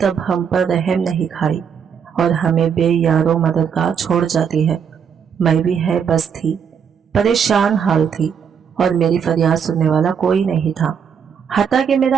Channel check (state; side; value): quieter; left; 7.3 dB